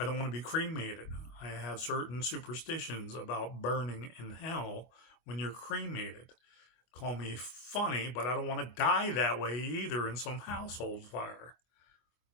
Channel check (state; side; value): late; right; 25 ms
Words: don't want to be cremated. I have certain superstitions about burning in hell when you're cremated. Call me funny, but I don't want to die that way either in some household fire.